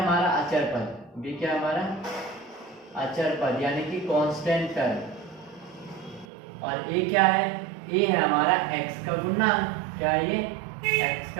अचर पद। b क्या है हमारा, अचर पद, यानी कि कांस्टेंट टर्म। और a क्या है, a है हमारा x का गुणांक। क्या है ये, x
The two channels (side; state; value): left; drops out; at 6.2 s